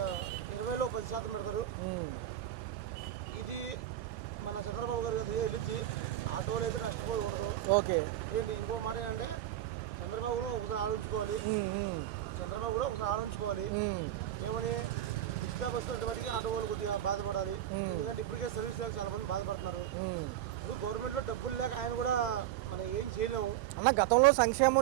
20లో 10% పెడతారు. ఇది మన చంద్రబాబు గారు కదా వెళ్ళిద్ది. ఆటోలు అయితే నష్టపోకూడదు. ఓకే. ఏంటి ఇంకో మాట ఏంటంటే చంద్రబాబు కూడా ఒకసారి ఆలోచించుకోవాలి. ఏమని ఉచిత బస్సులు వాటికి ఆటో వాళ్ళు కొద్దిగా బాధపడాలి. ఎందుకంటే ఇప్పటికే సర్వీస్ లేక చాలా మంది బాధపడుతున్నారు. ఇప్పుడు గవర్నమెంట్లో డబ్బులు లేక ఆయన కూడా మనం ఏం చేయలేము అన్న. గతంలో సంక్షేమ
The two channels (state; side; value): quieter; left; 12.3 dB